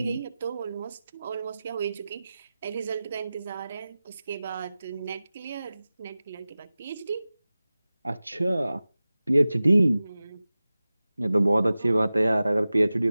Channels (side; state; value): both; inverted; correlation -0.96